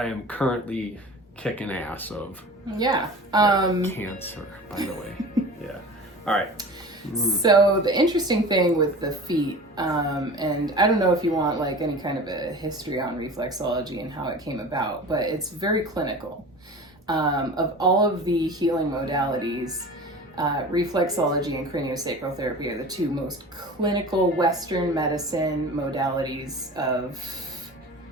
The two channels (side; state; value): both; normal; correlation 0.37